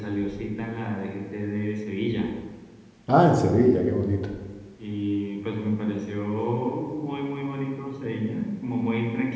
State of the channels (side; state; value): both; identical; correlation 1.00